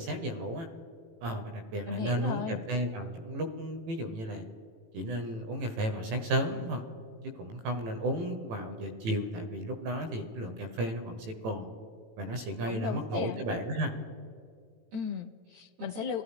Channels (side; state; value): left; late; 18 ms